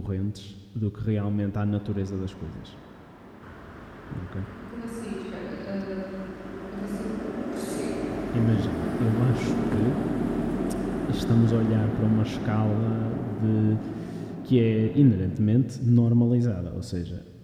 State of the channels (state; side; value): identical; both; correlation 1.00